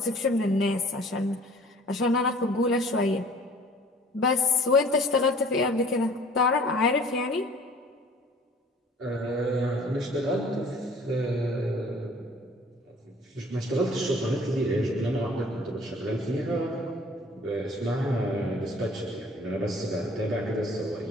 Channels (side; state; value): both; normal; correlation 0.51